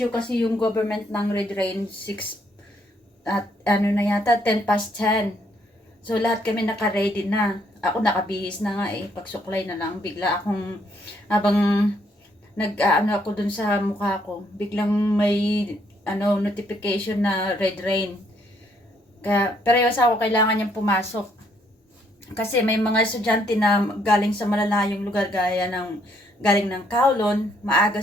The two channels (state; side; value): normal; both; correlation 0.70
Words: kasi yung government ng red rain 6 at 10 past 10. So lahat kami naka-ready na. Ako nakabihis na nga pagsuklay na lang bigla akong habang ako dun sa mukha ko, biglang may notification na red rain. Kaya parehas ako kailangan niyang pumasok. Kasi may mga estudyante na galing sa malalayong lugar galing ng Kowloon, maaga